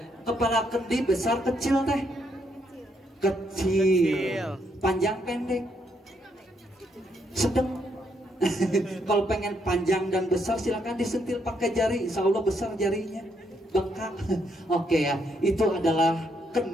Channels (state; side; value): normal; both; correlation 0.75